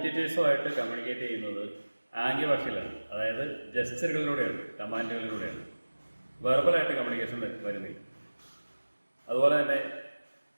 കമ്മ്യൂണിക്കേറ്റ് ചെയ്യുന്നത് ആംഗ്യഭാഷയിലാണ്, അതായത് ജസ്റ്ററുകളിലൂടെയാണ്, കമാൻഡുകളിലൂടെയാണ്. വെർബലായിട്ട് കമ്മ്യൂണിക്കേഷൻ വരുന്നില്ല. അതുപോലെ തന്നെ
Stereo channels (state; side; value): inverted; both; correlation -1.00